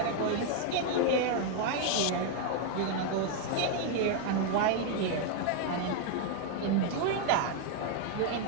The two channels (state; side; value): different; both; correlation 0.00